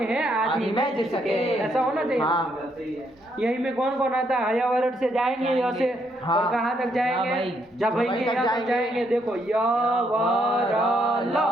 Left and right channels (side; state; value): both; normal; correlation 0.74